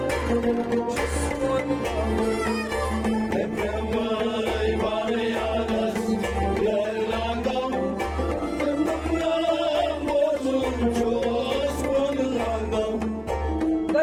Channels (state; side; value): identical; both; correlation 1.00